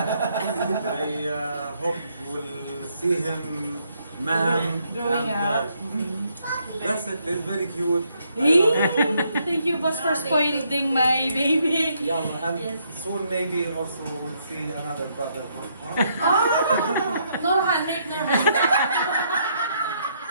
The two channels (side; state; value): both; inverted; correlation -0.73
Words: hope we'll see him, ma'am. Growing up. That's it. It's very cute. Thank you, boss, for spoiling my baby. Yeah, and soon maybe also we'll see another brother. Norhan, make Norhan.